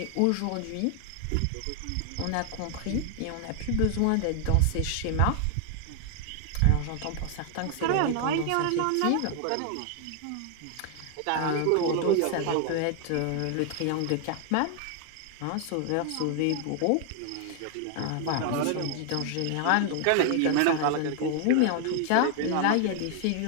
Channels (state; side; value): different; both; correlation 0.00